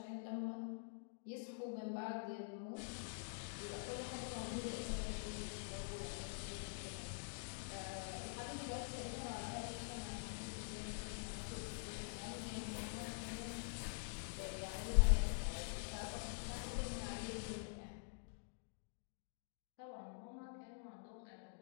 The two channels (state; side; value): silent; right; digital silence